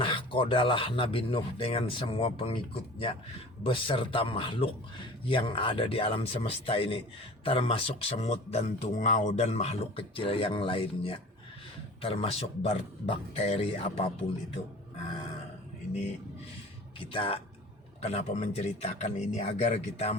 Nabi Nuh dengan semua pengikutnya beserta makhluk yang ada di alam semesta ini, termasuk semut dan tungau dan makhluk kecil yang lainnya, termasuk bakteri apapun itu. Nah, ini kita kenapa menceritakan ini agar kita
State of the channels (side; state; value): both; normal; correlation 0.42